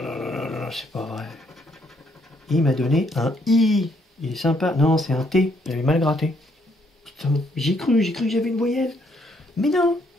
là là là, c'est pas vrai. Il m'a donné un I. Il est sympa. Non, c'est un T. J'avais mal gratté. Putain, j'ai cru que j'avais une voyelle. Mais non,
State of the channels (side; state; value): both; normal; correlation 0.71